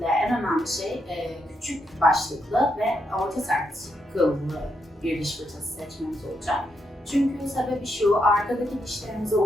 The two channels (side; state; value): both; normal; correlation 0.80